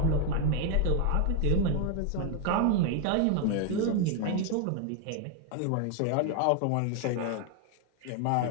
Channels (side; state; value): both; different; correlation 0.00